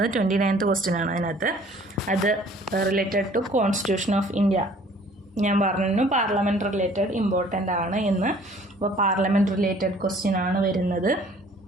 29th question ആണ്. അതിനകത്ത് അത് related to constitution of India. ഞാൻ പറഞ്ഞു പാർലമെൻറ്റ് റിലേറ്റഡ് ഇമ്പോർട്ടൻ്റ് ആണ് എന്ന്. അപ്പോൾ പാർലമെൻറ്റ് റിലേറ്റഡ് ക്വസ്റ്റ്യൻ ആണ് വരുന്നത്.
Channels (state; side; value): normal; both; correlation 0.54